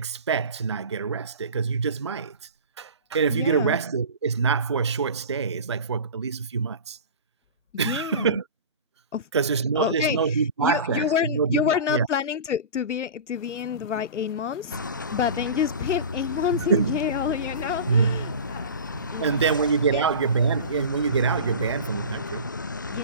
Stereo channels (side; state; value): both; inverted; correlation -0.34